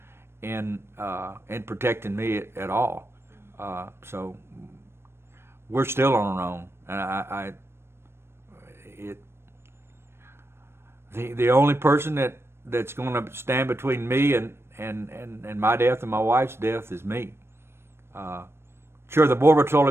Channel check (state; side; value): late; left; 0.12 ms